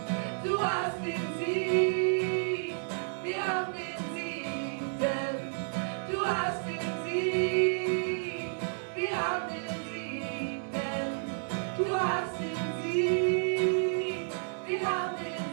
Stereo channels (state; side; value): silent; left; 56 dB below the other